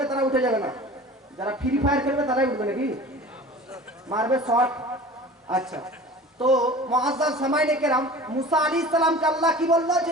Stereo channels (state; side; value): normal; both; correlation 0.40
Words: তারা উঠে যাবে না, যারা ফ্রি ফায়ার খেলবে তারাই উঠবে নাকি, মারবে শর্ট। আচ্ছা, তো মুআজ্জাজ সামাইনে কেরাম, মুসা আলাইহিস সালামকে আল্লাহ কি বললো